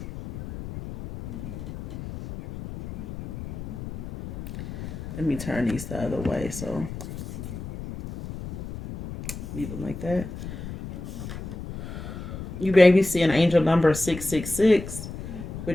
let me turn these the other way. So leave them like that. You baby see an angel number 666,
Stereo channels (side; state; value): left; noise; rumble, 10 dB below the sound